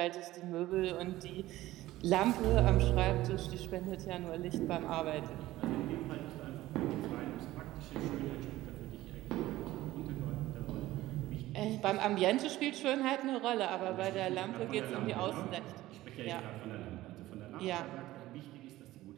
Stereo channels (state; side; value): quieter; left; 16.3 dB